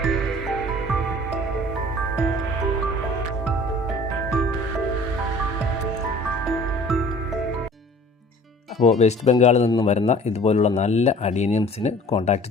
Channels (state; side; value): normal; both; correlation 0.49